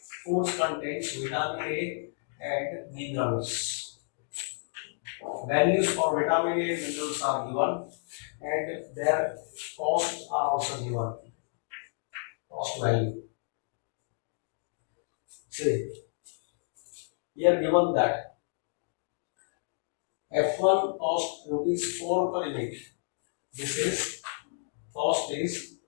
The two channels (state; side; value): silent; right; digital silence